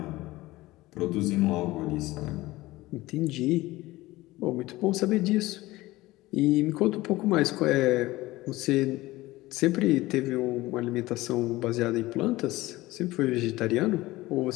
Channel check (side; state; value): right; quieter; 18.7 dB